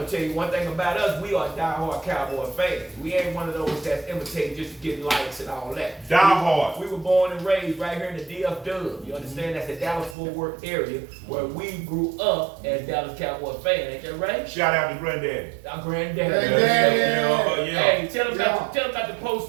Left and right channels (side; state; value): left; drops out; at 10.2 s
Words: tell you one thing about us, we are diehard Cowboy fans. We ain't one of those that's imitating just to get likes and all that. Diehard. We were born and raised right here in the DFW. You understand? That's the Dallas-Fort Worth area where we grew up as Dallas Cowboy fans. Ain't that right? Shout out to Granddaddy. Our granddaddy. Granddaddy. Yeah. Hey, tell them about the